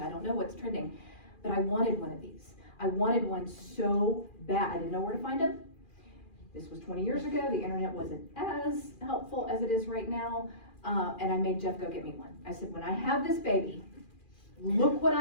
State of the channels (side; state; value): right; late; 2.4 ms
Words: I don't know what's trending. But I wanted one of these. I wanted one so bad. I didn't know where to find them. This was 20 years ago. The internet wasn't as helpful as it is right now. And I made Jeff go get me one. I said, when I have this baby, look what